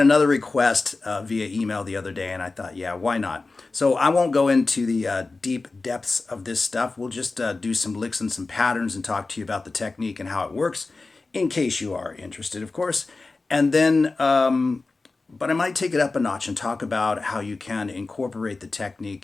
request via email the other day, and I thought, yeah, why not? So I won't go into the deep depths of this stuff. We'll just do some licks and some patterns and talk to you about the technique and how it works, in case you are interested, of course. And then, but I might take it up a notch and talk about how you can incorporate the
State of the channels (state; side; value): quieter; right; 3.6 dB